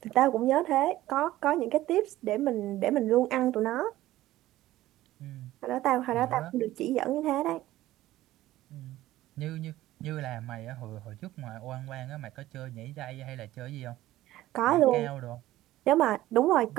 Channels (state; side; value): quieter; left; 15.4 dB